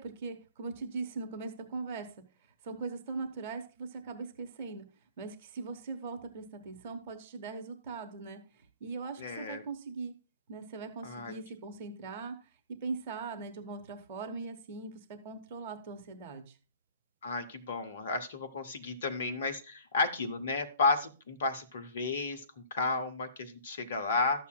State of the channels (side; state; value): both; inverted; correlation -0.51